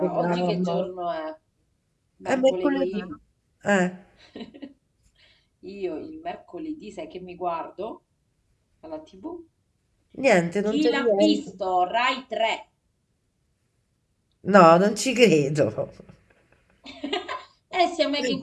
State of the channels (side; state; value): both; identical; correlation 1.00